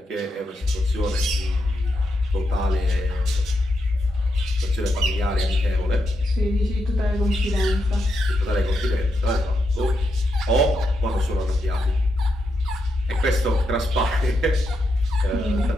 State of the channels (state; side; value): normal; both; correlation 0.83